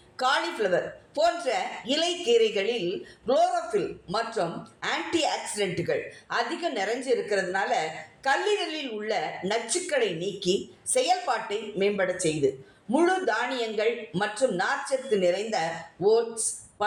காலிஃப்ளவர் போன்ற இலை கீரைகளில் குளோரோஃபில் மற்றும் ஆன்டி ஆக்சிடென்ட்டுகள் அதிகம் நிறைஞ்சு இருக்கிறதுனால கல்லீரலில் உள்ள நச்சுக்களை நீக்கி செயல்பாட்டை மேம்பட செய்து. முழு தானியங்கள் மற்றும் நார்ச்சத்து நிறைந்த ஓட்ஸ்,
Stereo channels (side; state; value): both; identical; correlation 1.00